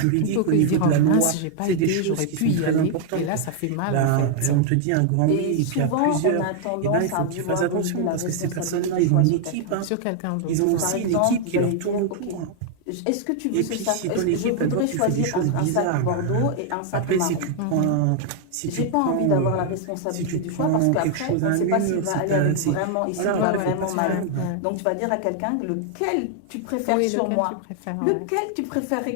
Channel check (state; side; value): different; both; correlation 0.00